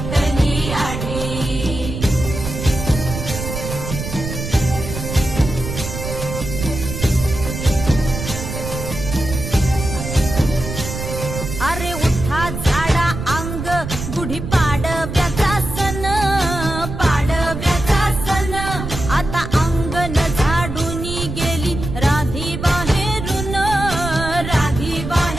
आढी. अरे उठा झाडा अंग, गुढी पाडव्याचा सण, पाडव्याचा सण. आता अंगण झाडून गेली राधी बाहेरून, राधी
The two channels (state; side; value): noise; right; rumble, 6 dB below the sound